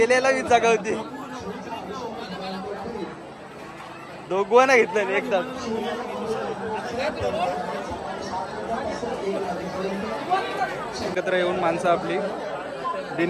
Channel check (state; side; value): identical; both; correlation 1.00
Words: हीच जागा होती. दोघांना घेतलं एकदा. एकत्र येऊन माणसं आपली.